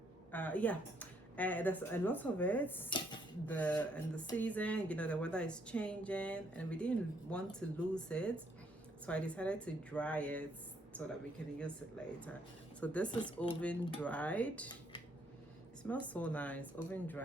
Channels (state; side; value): normal; both; correlation 0.70